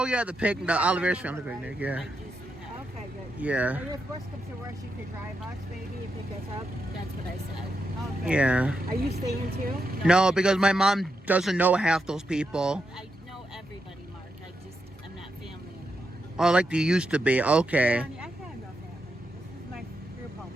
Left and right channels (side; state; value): both; normal; correlation 0.84